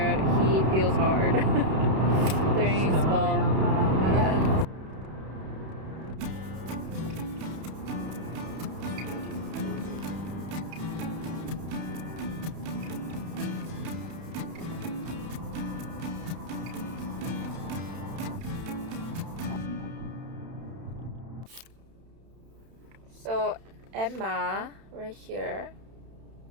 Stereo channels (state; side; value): late; left; 31 ms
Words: he feels hard during fall. Yeah. So Emma right here,